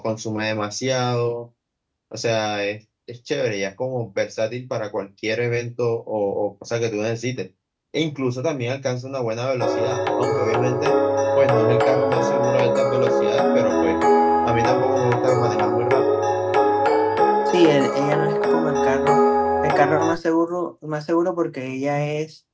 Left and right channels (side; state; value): both; identical; correlation 1.00